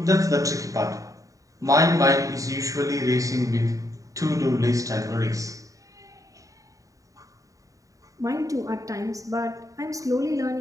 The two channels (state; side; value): late; left; 0.16 ms